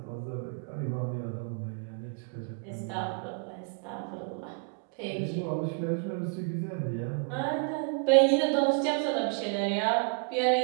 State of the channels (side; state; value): left; quieter; 39.5 dB